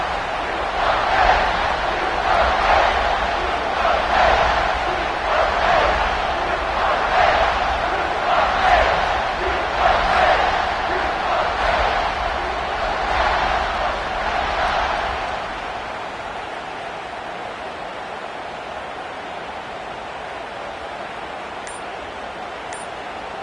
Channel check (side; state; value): both; identical; correlation 1.00